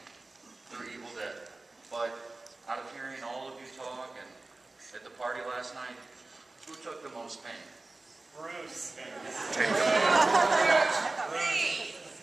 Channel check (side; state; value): left; quieter; 3.2 dB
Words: through Evil Dead, but out of hearing all of you talk and at the party last night, who took the most pain? Bruce.